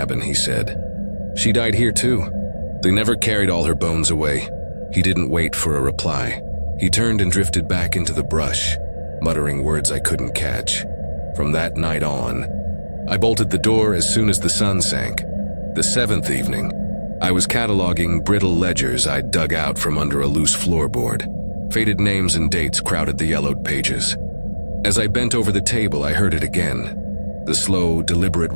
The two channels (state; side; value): inverted; both; correlation -1.00